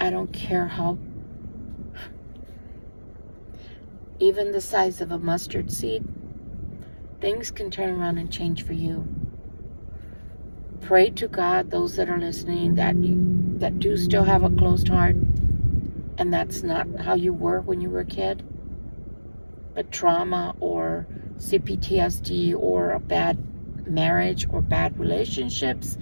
I don't care how, even the size of a mustard seed, things can turn around and change for you. Pray to God, those that are listening, that do still have a closed heart, and that's not how you were when you were a kid, but trauma or CPTSD or a bad marriage or bad relationships,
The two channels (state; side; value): inverted; both; correlation -1.00